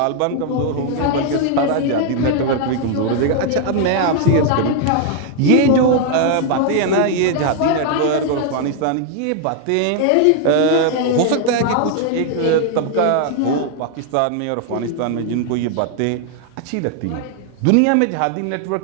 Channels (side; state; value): both; different; correlation 0.00